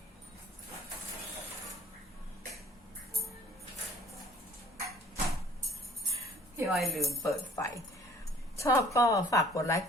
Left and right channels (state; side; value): normal; both; correlation 0.54